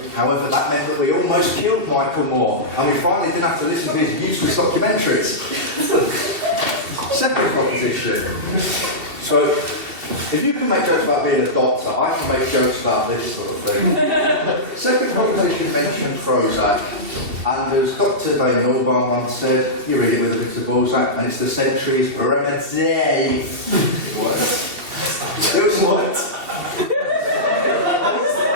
however, that meant that we almost killed Michael Moore, and we finally didn't have to listen to his useless documentaries. Second proposition. So, if you can make jokes about being a doctor, I can make jokes about this sort of thing. Second proposition mentioned Prozac, and as Dr. Dave Norbar once said, you read it with a bit of Balzac, and it's the century's remedy. What? It was what?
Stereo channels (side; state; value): left; late; 2.7 ms